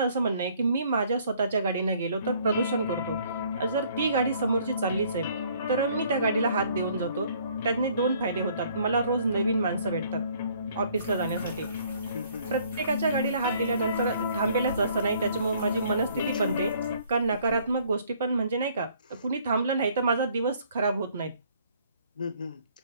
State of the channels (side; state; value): both; inverted; correlation -0.61